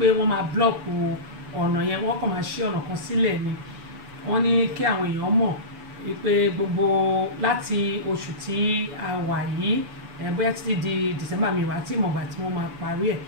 wọ́n máa block ọ̀nà yẹn wọ́n kàn máa ṣí ọ̀nà kan sílẹ̀ ni wọ́n ní kí àwọn èèyàn mọ̀ wípé gbogbo láti oṣù tí a wà yìí bóyá títí di December mi wà tí ìmọ̀gbà tí wọ́n máa parí ẹ̀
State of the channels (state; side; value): late; left; 7.0 ms